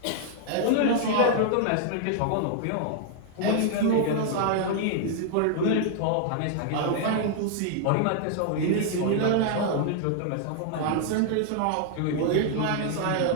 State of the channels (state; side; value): different; both; correlation -0.01